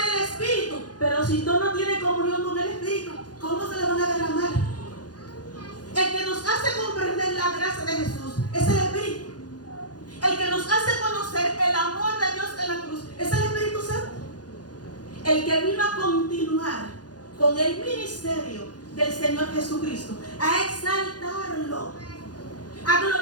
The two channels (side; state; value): right; late; 0.69 ms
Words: Espíritu. Pero si tú no tienes comunión con el Espíritu, ¿cómo se le van a derramar? El que nos hace comprender la gracia de Jesús es el Espíritu. El que nos hace conocer el amor de Dios en la cruz es el Espíritu Santo. El que vino a continuar con el ministerio del Señor Jesucristo, a exaltarlo, a